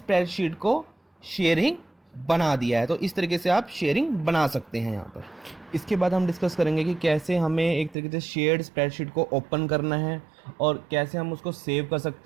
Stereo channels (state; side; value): drops out; left; at 8.0 s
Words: को शेयरिंग बना दिया है। तो इस तरीके से आप शेयरिंग बना सकते हैं यहाँ पर। इसके बाद हम डिस्कस करेंगे कि कैसे हमें एक तरीके से शेयर्ड स्प्रेडशीट को ओपन करना है और कैसे हम उसको सेव कर